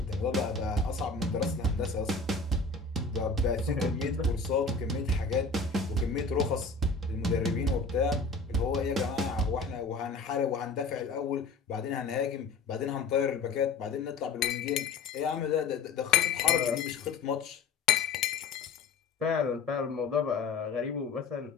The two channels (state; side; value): quieter; right; 4.2 dB